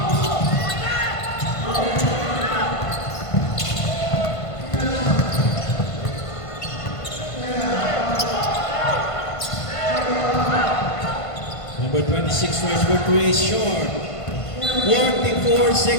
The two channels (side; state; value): right; late; 1.5 ms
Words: Number 26 tries for 3 is short. 44